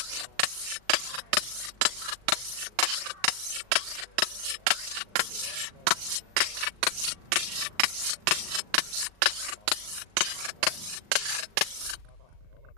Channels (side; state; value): left; late; 38 ms